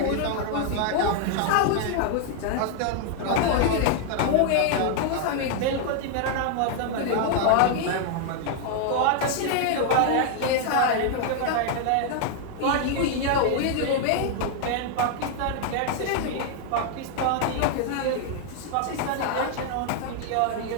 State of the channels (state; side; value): different; both; correlation 0.00